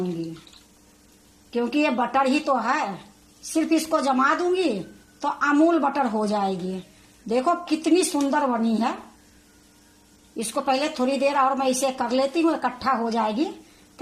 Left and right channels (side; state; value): both; identical; correlation 1.00